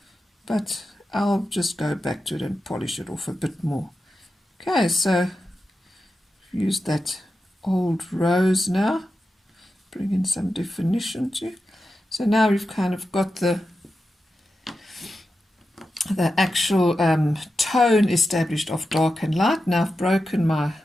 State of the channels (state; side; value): normal; both; correlation 0.90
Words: but I'll just go back to it and polish it off a bit more. Okay, so use that old rose now, bring in some definition too. So now we've kind of got the actual tone established of dark and light. Now I've broken my